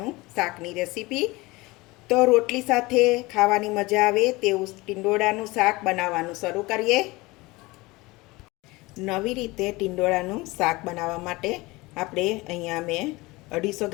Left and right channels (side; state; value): right; quieter; 22.3 dB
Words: શાકની રેસીપી. તો રોટલી સાથે ખાવાની મજા આવે તેવું ટીંડોળાનું શાક બનાવવાનું શરૂ કરીએ. નવી રીતે ટીંડોળાનું શાક બનાવવા માટે આપણે અહીંયા મેં 250